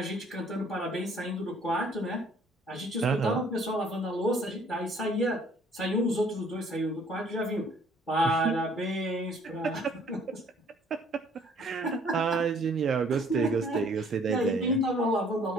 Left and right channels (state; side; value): normal; both; correlation 0.59